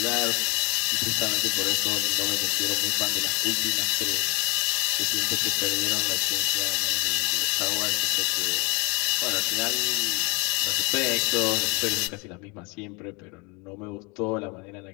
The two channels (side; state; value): right; quieter; 30.0 dB